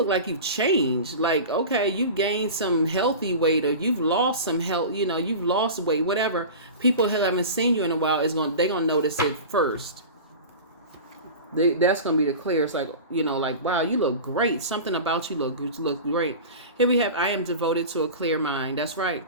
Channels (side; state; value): both; inverted; correlation -0.32